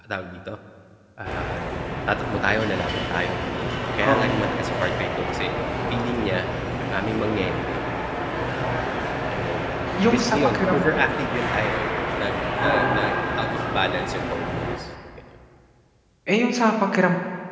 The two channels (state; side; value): identical; both; correlation 1.00